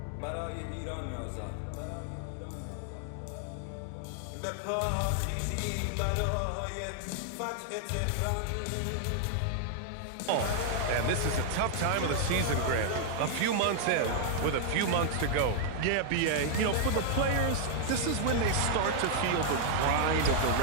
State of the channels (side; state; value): both; different; correlation -0.01